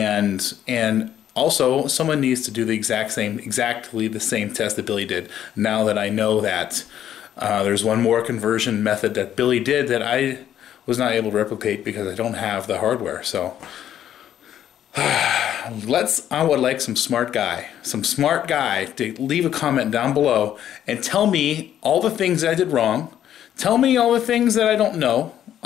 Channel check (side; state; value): right; quieter; 10.8 dB